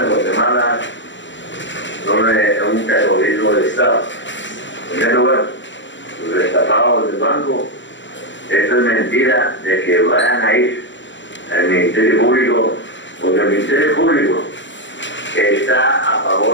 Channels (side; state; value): right; late; 0.54 ms